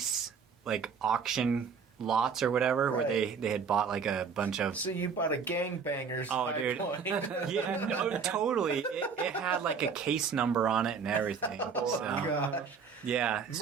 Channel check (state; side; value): quieter; left; 5.9 dB